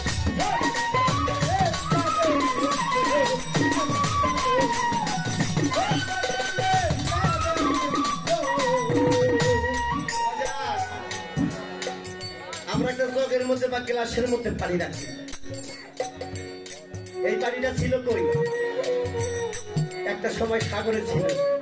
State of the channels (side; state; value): both; identical; correlation 1.00